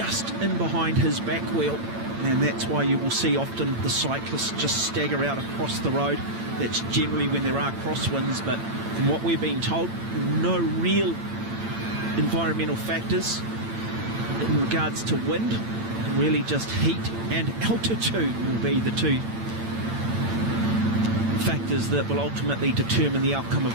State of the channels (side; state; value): left; late; 8.9 ms